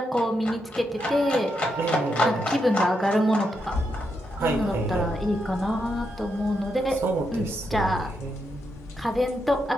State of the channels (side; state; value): both; normal; correlation 0.82